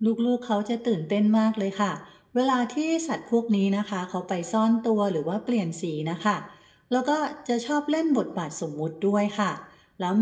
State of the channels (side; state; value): both; identical; correlation 1.00